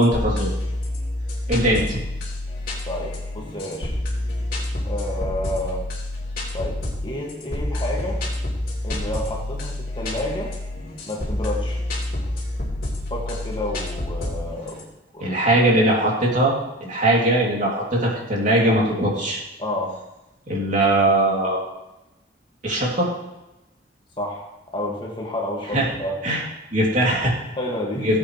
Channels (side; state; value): both; normal; correlation 0.40